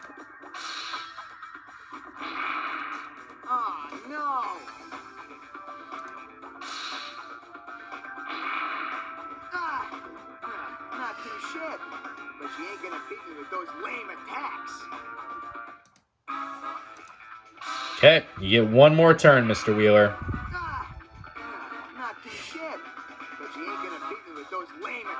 Oh no! Not too shit, but you ain't gonna beat me with those lame attacks. Okay, you get one more turn, Mr. Wheeler. Not too shit, but you ain't gonna beat me with those lame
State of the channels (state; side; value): identical; both; correlation 1.00